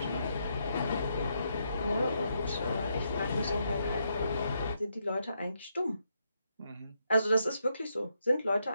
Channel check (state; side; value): inverted; both; correlation -0.79